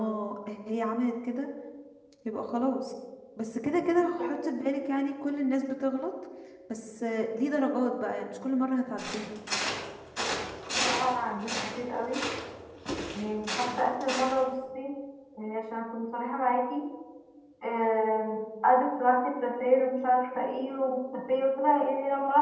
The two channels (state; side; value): identical; both; correlation 1.00